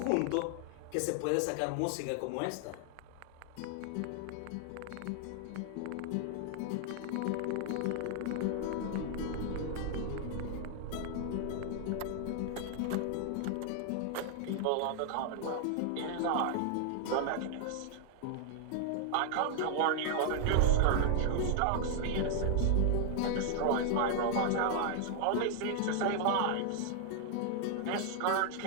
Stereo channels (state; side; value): different; both; correlation 0.00